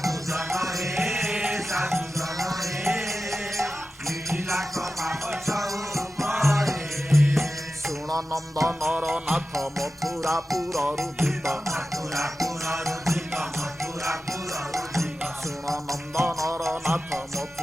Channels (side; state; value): both; normal; correlation 0.93